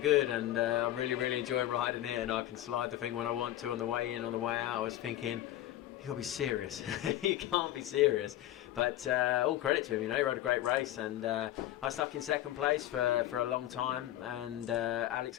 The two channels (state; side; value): quieter; right; 13.7 dB